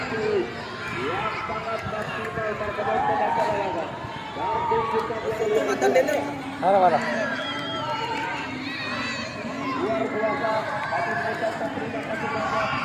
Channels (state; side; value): identical; both; correlation 1.00